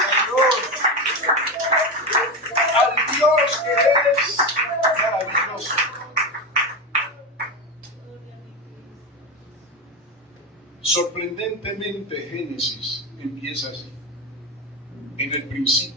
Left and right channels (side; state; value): both; normal; correlation 0.16